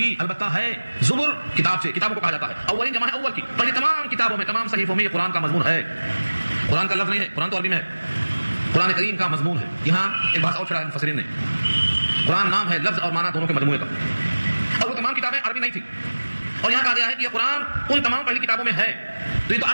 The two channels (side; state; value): both; inverted; correlation -1.00